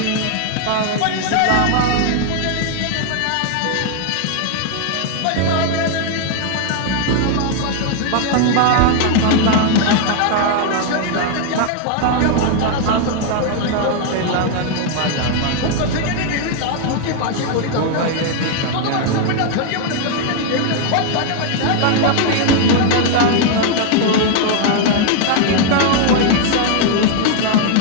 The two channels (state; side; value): different; both; correlation 0.00